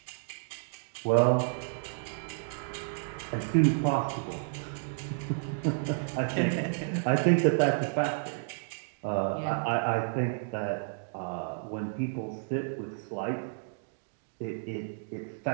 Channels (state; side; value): silent; left; digital silence